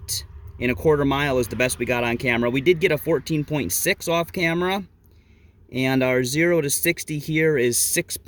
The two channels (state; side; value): identical; both; correlation 1.00